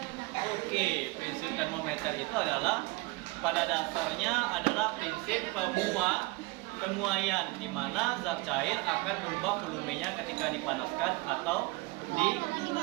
Oke, prinsip termometer itu adalah pada dasarnya adalah prinsip pemuaian di mana zat cair akan berubah volumenya ketika dipanaskan atau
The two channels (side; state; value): left; quieter; 24.4 dB